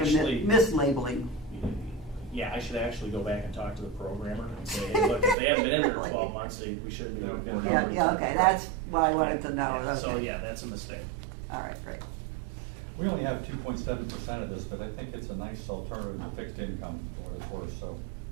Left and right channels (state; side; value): drops out; left; at 5.4 s